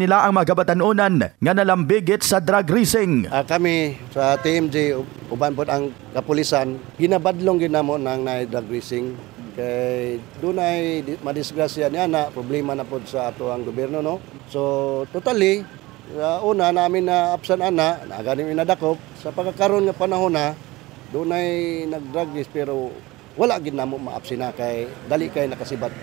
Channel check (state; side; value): quieter; left; 20.3 dB